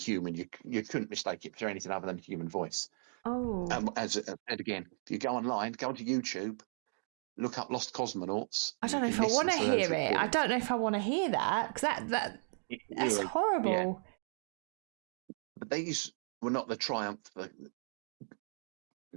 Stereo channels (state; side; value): silent; left; 54 dB below the other